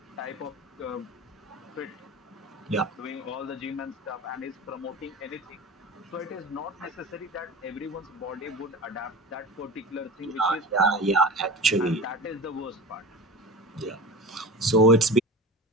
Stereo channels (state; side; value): normal; both; correlation 0.32